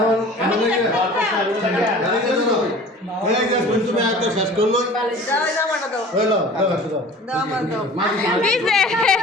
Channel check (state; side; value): normal; both; correlation 0.43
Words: তুমি একটা শেষ করলো